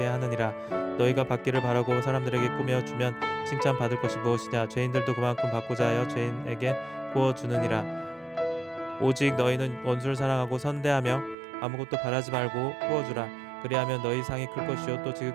하느니라. 너희가 받기를 바라고 사람들에게 꾸며 주면 칭찬받을 것이 무엇이냐. 죄인들도 그만큼 받고자 하여 죄인에게 구워주느니라. 오직 너희는 원수를 사랑하고 선대하며 아무것도 바라지 말고 구워주라. 그리하면 너희 상이 클 것이요 또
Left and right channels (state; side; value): drops out; left; at 11.4 s